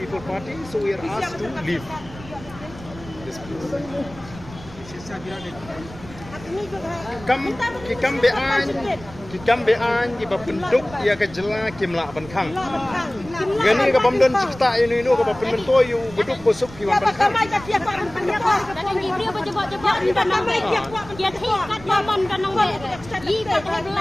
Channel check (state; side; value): noise; right; rumble, 17 dB below the sound